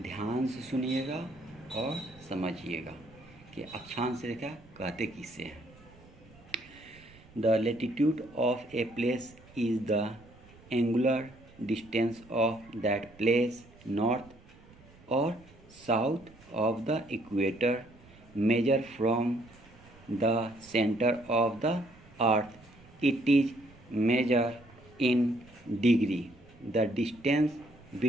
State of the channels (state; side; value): noise; right; rumble, 24 dB below the sound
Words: ध्यान से सुनिएगा और समझिएगा कि अक्षांश रेखा कहते किसे हैं। The latitude of a place is the angular distance of that place north or south of the equator measure from the center of the earth. It is measured in degree. The distance